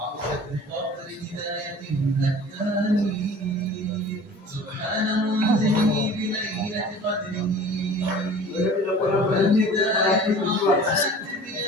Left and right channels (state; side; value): normal; both; correlation 0.43